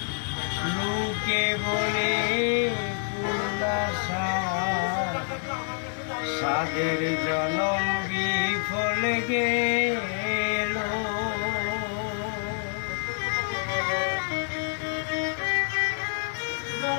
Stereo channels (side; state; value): right; silent; 59 dB below the other